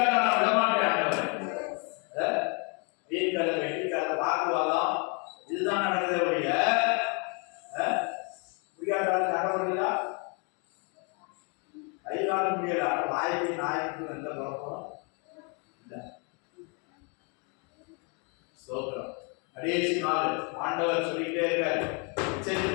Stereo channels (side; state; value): right; quieter; 35.5 dB